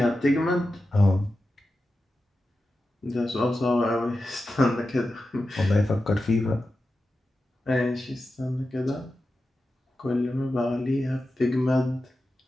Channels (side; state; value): both; normal; correlation 0.92